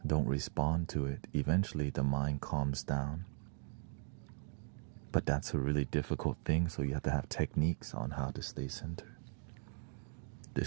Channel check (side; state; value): left; silent; digital silence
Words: Don't respond to it. Eventually the mind calms down. But that's a really difficult thing, so you have to have techniques on how to stay centered.